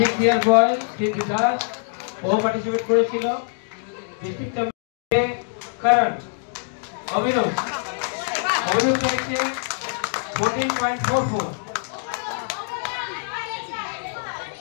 ইয়ার বয় সিদ্ধি দাস, ও পার্টিসিপেট করেছিল। ডিস্ট্রিক্ট চ্যাম্পিয়ন করণ অভিনব পেয়েছে 14.44।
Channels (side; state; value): right; silent; digital silence